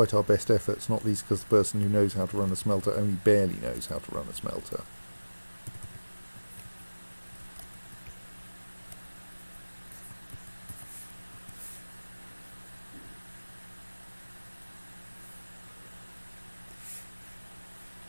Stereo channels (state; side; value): inverted; both; correlation -1.00